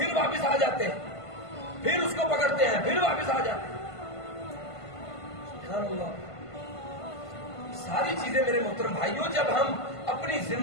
واپس آ جاتے ہیں، پھر اس کو پکڑتے ہیں، پھر واپس آ جاتے ہیں. سبحان اللہ. ساری چیزیں میرے محترم بھائیوں جب ہم اپنی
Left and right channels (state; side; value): late; right; 1.5 ms